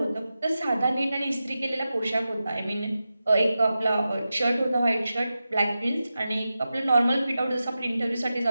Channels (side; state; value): both; inverted; correlation -0.92